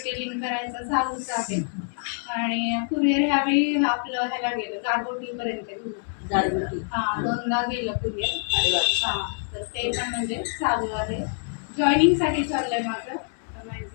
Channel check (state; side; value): silent; right; 61 dB below the other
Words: करायचं चालूच आहे. आणि कुरिअर ह्यावेळी आपलं ह्याला गेलं गारगोटीपर्यंत गेलं. हां, 2दा गेलं कुरिअर. हां, तर ते पण म्हणजे चालू आहे. जॉईनिंगसाठी चाललंय माझं.